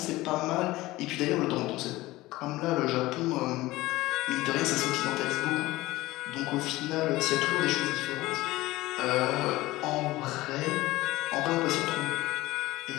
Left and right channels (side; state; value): right; quieter; 18.6 dB